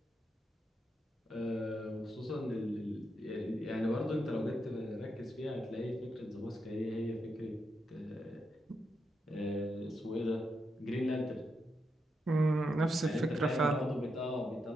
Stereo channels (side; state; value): both; normal; correlation 0.83